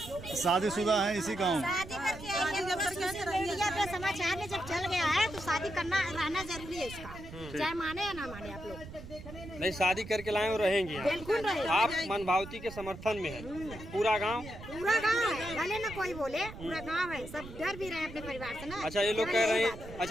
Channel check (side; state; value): right; noise; rumble, 13 dB below the sound